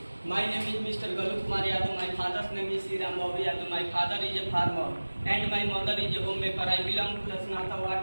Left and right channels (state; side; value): inverted; both; correlation -1.00